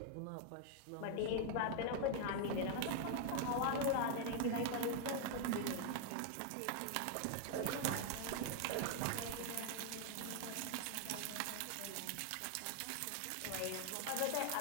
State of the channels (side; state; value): both; different; correlation 0.00